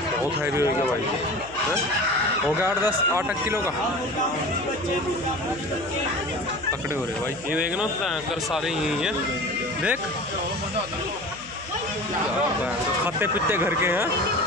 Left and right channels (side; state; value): left; noise; hum, 21 dB below the sound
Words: बहुत हैवी होगा भाई। हैं हो गया 8 किलो का पकड़े हो रहे भाई। ये देखना कर सारे यही हैं, देख खाते पीते घर के हैं।